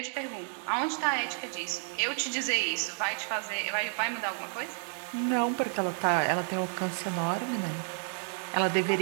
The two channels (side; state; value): left; silent; 57 dB below the other